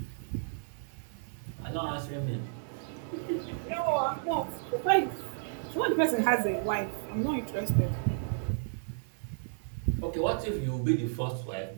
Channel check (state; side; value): silent; left; digital silence